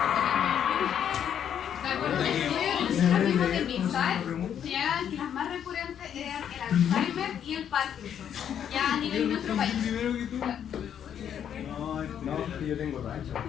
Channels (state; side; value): quieter; right; 9.1 dB